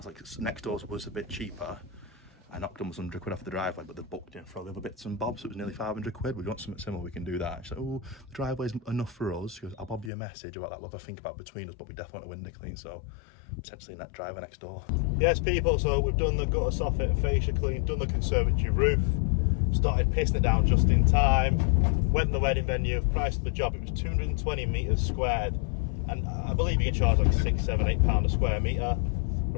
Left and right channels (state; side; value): drops out; right; at 10.1 s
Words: like, next door's was a bit cheaper. I knocked almost 100 quid off the driveway, but they booked in for all the other bits and bobs, so it was nearly 500 quid. We want something similar, we can do that. She's like, oh, the driveway's enough for us. She goes, I'll bob you a message about that, we'll have a think about between us, but we definitely want a window clean, so potentially net driveway next door. Yes, people, so we've done the gutter soffit and fascia clean, done the conservatory roof, started pissing it down just in time, went to the wedding venue, price of the job, it was 220 metres squared, and I believe you can charge like £6, £7, £8 a square metre.